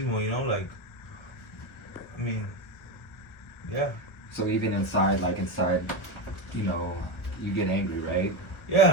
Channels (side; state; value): right; late; 1.1 ms